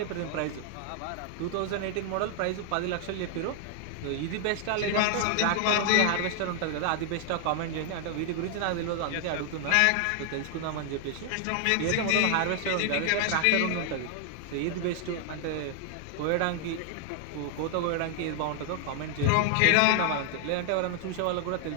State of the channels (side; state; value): both; different; correlation 0.00